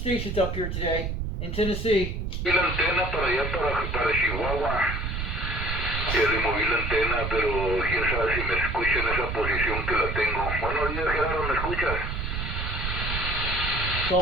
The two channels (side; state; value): right; noise; rumble, 3 dB below the sound